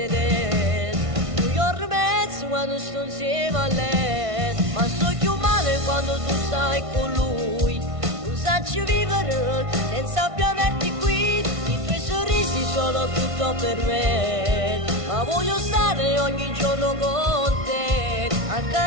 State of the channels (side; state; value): left; late; 1.5 ms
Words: Un giorno e mezzo quando sto insieme a lei. Ma sto più male quando tu stai con lui. Non sacci vivere senza più averti qui. I tuoi sorrisi sono tutto per me. Ma voglio stare ogni giorno con te.